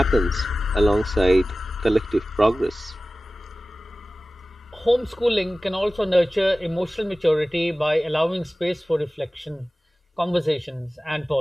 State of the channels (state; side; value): normal; both; correlation 0.97